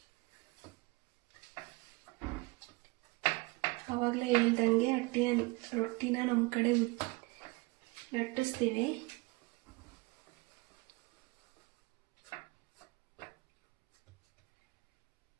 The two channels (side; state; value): left; quieter; 25.7 dB